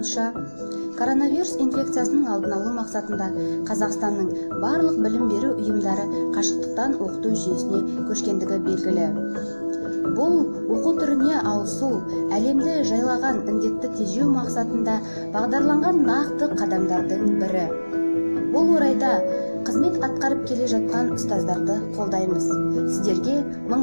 коронавирус инфекциясының алдын алу мақсатында Қазақстанның барлық білім беру ұйымдары қашықтықтан оқыту жүйесіне көшкендігі белгілі. Бұл оқу түріне ауысу әлемді жайлаған індетті тежеу мақсатында бағдарланған нақты қадамдардың бірі. Бұл орайда қызмет атқарып келе жатқан ұстаздарды қолдаймыз. Сіздерге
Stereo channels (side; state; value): both; inverted; correlation -1.00